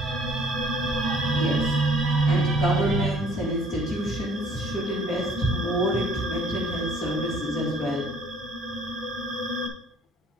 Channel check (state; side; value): normal; both; correlation 0.56